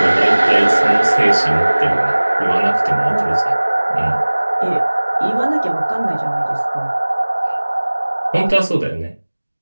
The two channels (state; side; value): inverted; both; correlation -1.00